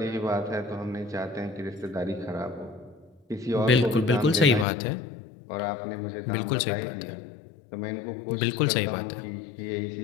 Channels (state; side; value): drops out; right; at 4.7 s